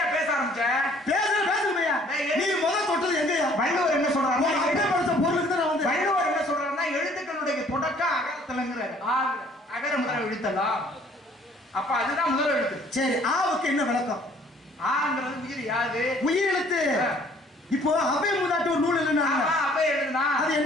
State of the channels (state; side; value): normal; both; correlation 0.58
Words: பேச ஆரம்பிச்ச. பேசுமையா நீ முதல் தொட்டது எங்கயா? வள்ளுவர் என்ன சொல்றாரு? அப்படியே படிச்ச பொருளுக்கு தான் நான் வந்து. வள்ளுவர் என்ன சொல்றாருன்னா எழுத்துக்களுடைய தொடக்கம் அகரத்துலங்கிறாரு. அகர முதல் எழுத்தலாம். அப்ப அதுதான் முதல் எழுத்து. சரி, ஆவுக்கு என்ன விளக்கம்? ஆங்கிறது உயிர். யாது உயிர் எழுத்து. இப்போ அபை மூதாட்டி ஒரு நூல் எழுதுனா அபை எழுதுனா அது